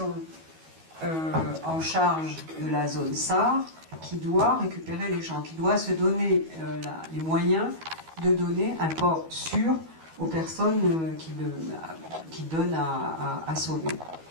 en charge de la zone SAR qui doit récupérer les gens, qui doit se donner les moyens de donner un port sûr aux personnes qui donnent à sauver.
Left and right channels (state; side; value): late; left; 12 ms